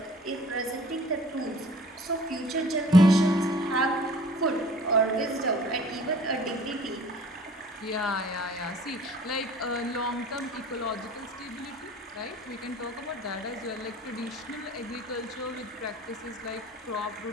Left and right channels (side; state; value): both; normal; correlation 0.49